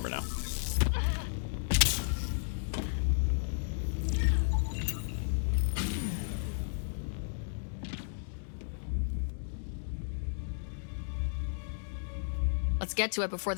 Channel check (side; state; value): right; silent; digital silence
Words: now. Let's get to it before